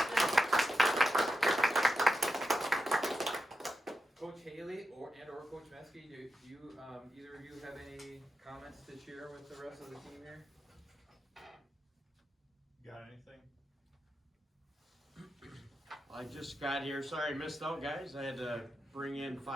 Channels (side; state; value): both; normal; correlation 0.89